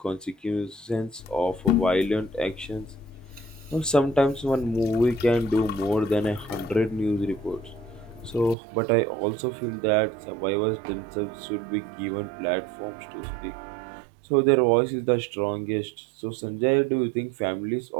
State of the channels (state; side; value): drops out; left; at 8.6 s